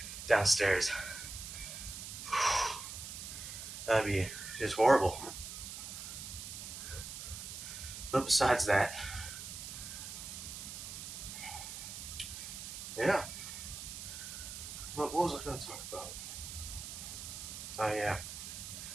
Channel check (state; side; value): noise; right; hiss, 8 dB below the sound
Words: downstairs. That'd be just horrible. But besides that, yeah. What was I going to talk about? Oh yeah,